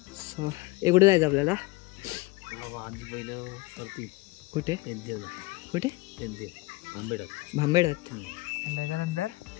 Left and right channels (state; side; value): quieter; right; 22.1 dB